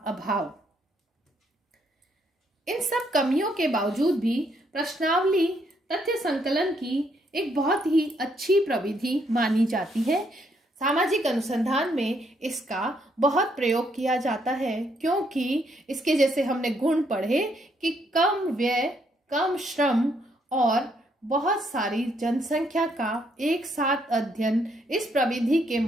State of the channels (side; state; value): both; normal; correlation 0.73